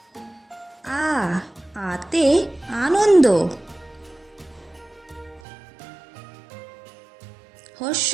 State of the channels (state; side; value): drops out; left; at 5.4 s